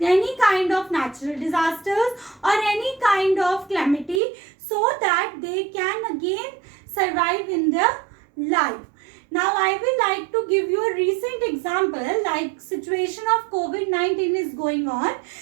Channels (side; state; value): left; drops out; at 4.2 s